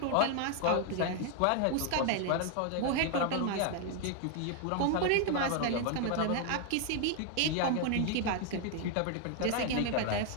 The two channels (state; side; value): different; both; correlation 0.00